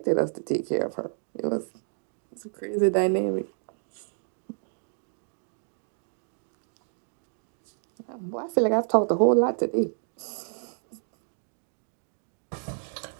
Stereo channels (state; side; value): silent; left; 58 dB below the other